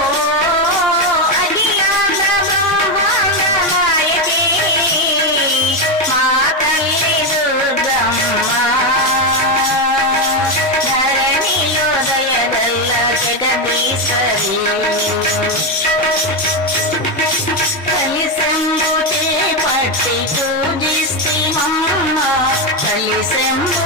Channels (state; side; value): normal; both; correlation 0.09